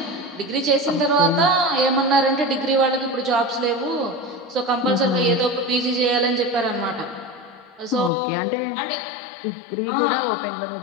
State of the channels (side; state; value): right; drops out; at 8.1 s